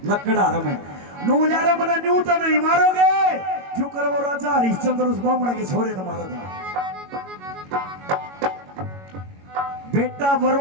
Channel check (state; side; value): late; left; 21 ms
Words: लकड़ार में नूल्यारा मना न्यू तो नहीं मारोगे, क्यों कर वो राजा हरिश्चंद्र उस ब्राह्मण के छोरे ने मारा था। बेटा